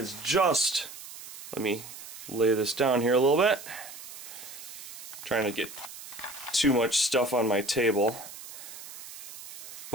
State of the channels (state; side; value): noise; right; hiss, 13 dB below the sound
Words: just, let me lay this down here a little bit. Trying to get too much stuff on my table.